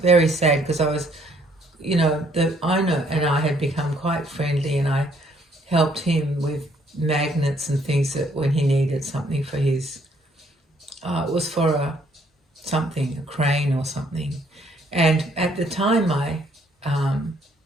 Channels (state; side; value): normal; both; correlation 0.66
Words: sad because I was, you know, the owner and I had become quite friendly, and I helped him with magnets and things that when he needed something for his, it was for a crane or something. And at the time my